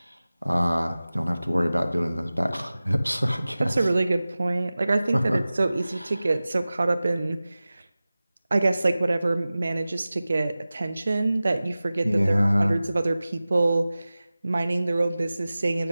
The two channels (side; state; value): both; inverted; correlation -0.97